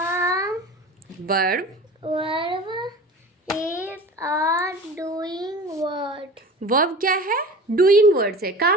Verb is a doing word. Verb क्या है? डूइंग वर्ड्स है,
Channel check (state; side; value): normal; both; correlation 0.37